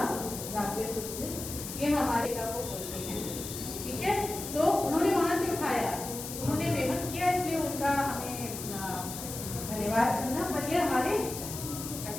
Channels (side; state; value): left; noise; hiss, 8 dB below the sound